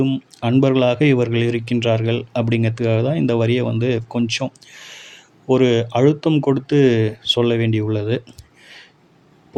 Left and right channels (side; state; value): both; identical; correlation 1.00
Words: அன்பர்களாக இவர்கள் இருக்கின்றார்கள் அப்படிங்கிறதுக்காக தான் இந்த வரியை வந்து கொஞ்சம் ஒரு அழுத்தம் கொடுத்து சொல்ல வேண்டியுள்ளது.